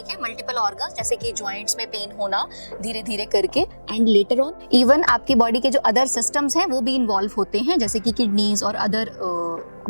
मल्टीपल ऑर्गन्स जैसे कि जॉइंट्स में पेन होना धीरे धीरे करके, एंड लेटर ऑन इवन आपकी बॉडी के जो अदर सिस्टम्स हैं वो भी इन्वॉल्व होते हैं जैसे कि किडनीज और अदर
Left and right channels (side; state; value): both; inverted; correlation -1.00